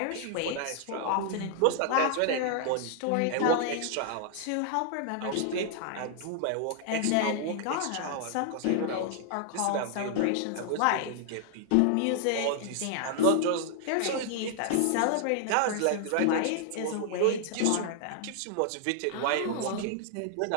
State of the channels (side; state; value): both; different; correlation -0.01